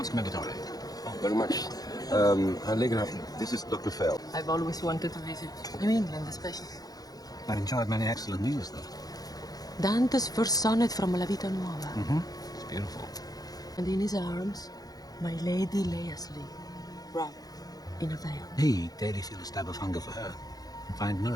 Commendatore. Very much. Allegra, this is Dr. Fell. I've always wanted to visit New England, especially. I've enjoyed many excellent meals, though. Dante's first sonnet from La Vita Nuova. It's beautiful. And in his arms, my lady lay asleep, wrapped in a veil. He daily feel a stab of hunger for her and find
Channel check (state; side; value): late; right; 0.18 ms